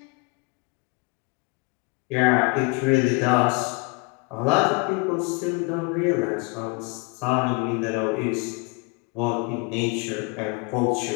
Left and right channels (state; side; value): quieter; right; 30.3 dB